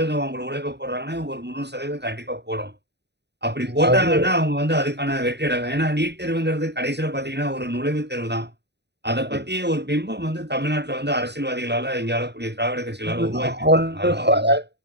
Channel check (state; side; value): late; left; 0.50 ms